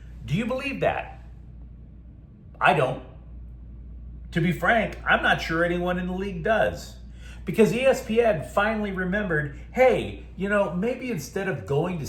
Do you believe that? I don't. To be frank, I'm not sure anyone in the league does. Because ESPN finally remembered, hey, maybe instead of going to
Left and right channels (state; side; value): identical; both; correlation 1.00